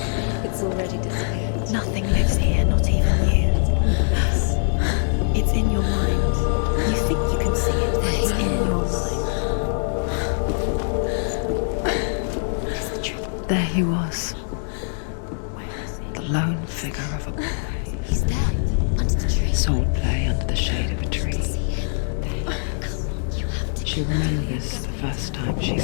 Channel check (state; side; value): silent; right; digital silence